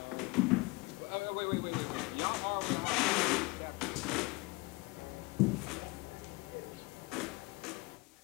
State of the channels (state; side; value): quieter; right; 24.4 dB